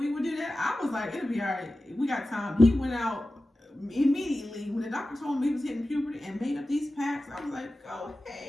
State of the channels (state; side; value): normal; both; correlation 0.95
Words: would do that? I was like, it'll be all right. We got time. He went out immediately when the doctor told him he was hitting puberty and made up these packs. I was like, go